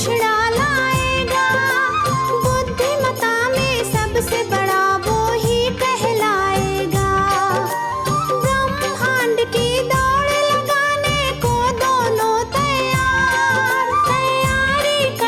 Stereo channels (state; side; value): identical; both; correlation 1.00